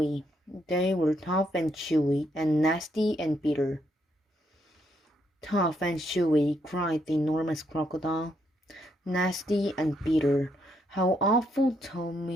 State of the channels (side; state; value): both; normal; correlation 0.76